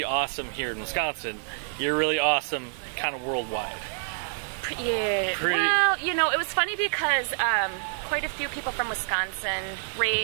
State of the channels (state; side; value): silent; left; 60 dB below the other